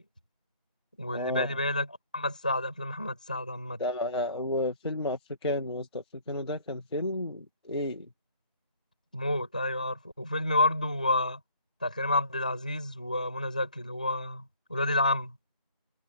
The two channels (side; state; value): both; inverted; correlation -0.57